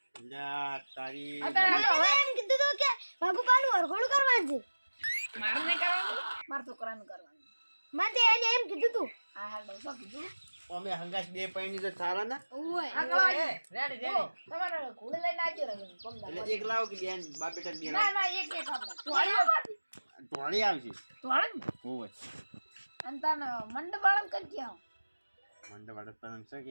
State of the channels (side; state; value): both; inverted; correlation -1.00